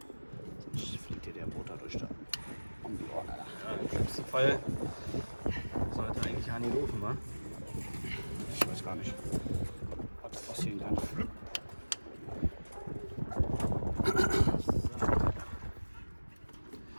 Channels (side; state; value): both; inverted; correlation -1.00